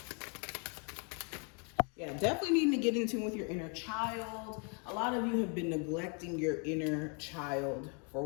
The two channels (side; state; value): right; quieter; 37.1 dB